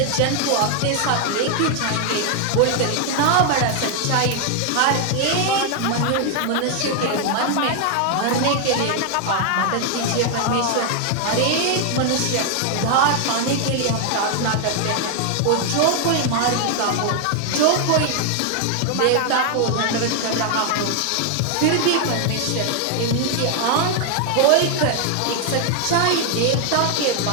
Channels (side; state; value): both; different; correlation 0.00